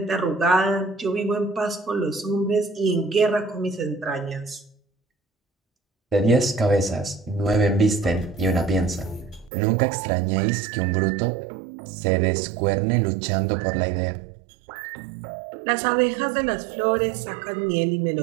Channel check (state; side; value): drops out; left; at 9.5 s